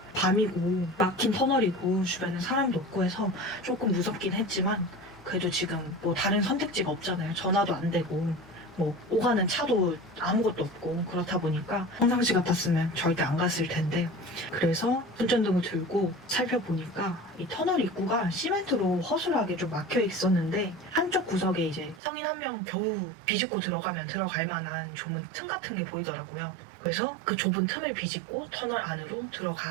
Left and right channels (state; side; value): drops out; left; at 22.0 s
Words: 밤이고 막힌 터널이고 주변에 사람도 없고 해서 조금 무섭긴 했지만 그래도 지금 뭐 다른 선택지가 없잖아요. 전화도 안 되고 뭐 오가는 차도 아무것도 없고 그렇다 보니까 평상시 같았으면 절대 안 갔을 텐데 그래서 손전등을 들고 살펴보니까 이 터널 입구가 시멘트로 허술하게 좀 막혀 있었는데 한쪽 구석에 이제 성인 한 명 겨우 비집고 들어가면 들어갈 만한 좁은 틈 같은 게 보이더라고요. 그래서 그 좁은 틈을 비집고 터널 안으로